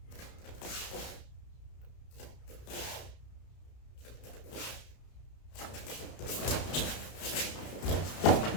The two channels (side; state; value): right; late; 32 ms